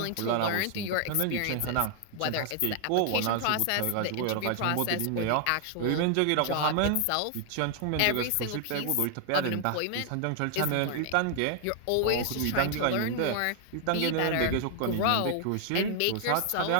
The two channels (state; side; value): different; both; correlation 0.00